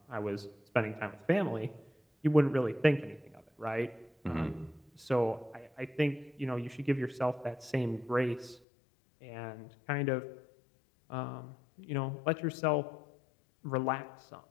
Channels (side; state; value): right; drops out; at 8.6 s